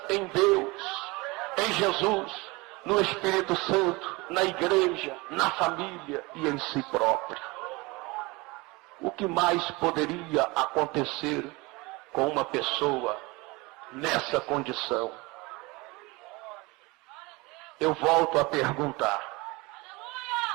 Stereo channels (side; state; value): left; quieter; 24.1 dB